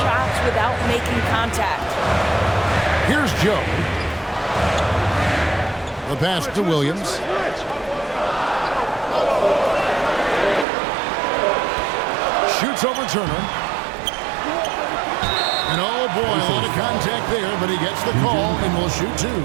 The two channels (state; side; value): drops out; left; at 10.7 s